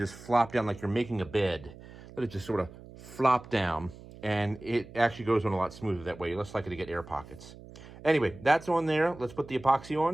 flop down like you're making a bed. Let it just sort of flop down, and it actually goes on a lot smoother that way. You're less likely to get air pockets. Anyway, that's on there. Let's put the epoxy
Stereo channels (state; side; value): noise; right; hum, 18 dB below the sound